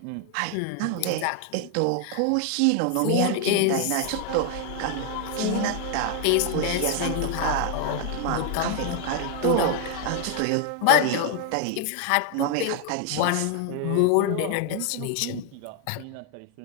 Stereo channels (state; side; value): different; both; correlation 0.00